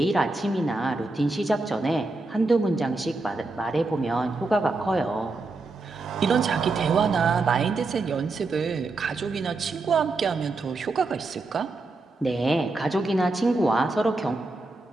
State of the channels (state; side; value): quieter; left; 3.3 dB